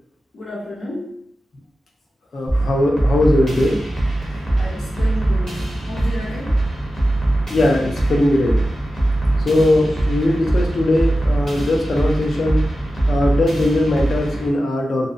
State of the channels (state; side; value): normal; both; correlation 0.93